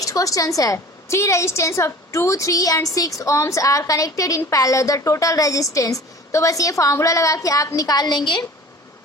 क्वेश्चन है, 3 resistance of 2, 3 and 6 ohms are connected in parallel, the total resistance. तो बस ये फॉर्मूला लगा के आप निकाल लेंगे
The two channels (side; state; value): both; normal; correlation 0.43